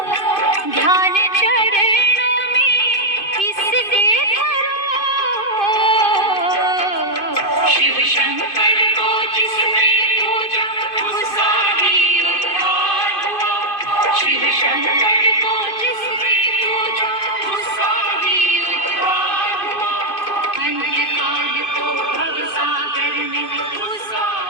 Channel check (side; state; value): right; late; 2.5 ms